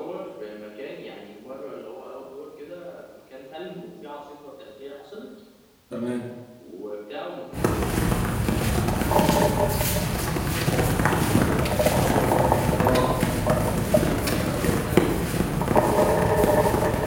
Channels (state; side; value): identical; both; correlation 1.00